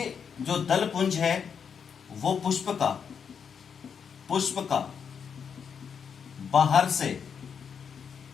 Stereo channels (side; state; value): right; quieter; 6.9 dB